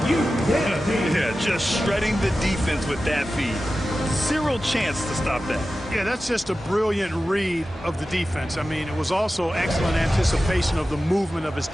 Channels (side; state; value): both; normal; correlation 0.94